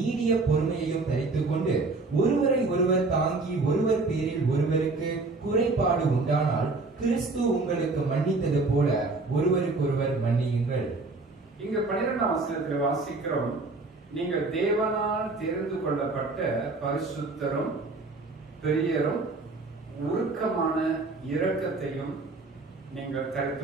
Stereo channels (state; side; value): quieter; left; 3.5 dB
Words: பொறுமையையும் தரித்துக் கொண்டு ஒருவரை ஒருவர் தாங்கி ஒருவர் பேரில் ஒருவருக்கு குறைபாடு உண்டானால் கிறிஸ்து உங்களுக்கு மன்னித்தது போல ஒருவருக்கொருவர் மன்னியுங்கள். இங்க 12ஆம் வசனத்தில் வாசிக்கிறோம், நீங்கள் தேவனால் தெரிந்து கொள்ளப்பட்ட பரிசுத்தரும் பெரியரும் உருக்கமான இரக்கத்தையும் நீங்கள்